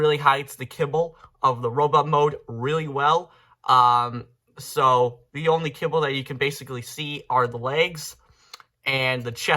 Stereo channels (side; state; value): both; identical; correlation 1.00